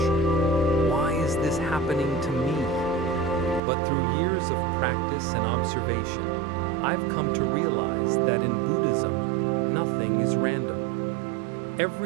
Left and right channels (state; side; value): drops out; left; at 3.6 s